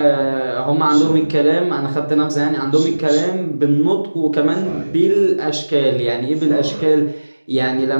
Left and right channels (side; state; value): both; inverted; correlation -1.00